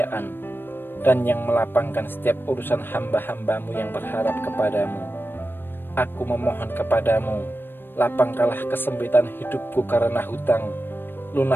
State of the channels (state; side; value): late; right; 0.097 ms